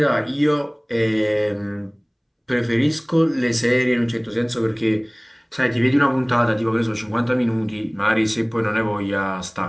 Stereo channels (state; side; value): identical; both; correlation 1.00